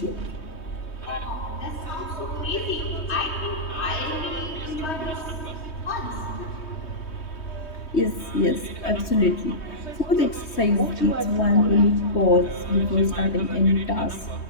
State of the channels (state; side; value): late; right; 3.2 ms